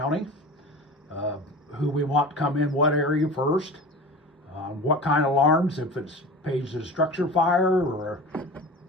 who we want to come in what area first, what kind of alarms, if it's pays a structure fire, or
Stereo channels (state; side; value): normal; both; correlation 0.35